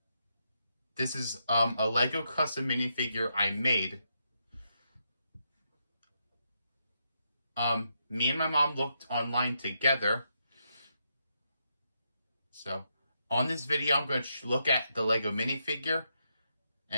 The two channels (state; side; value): inverted; both; correlation -0.81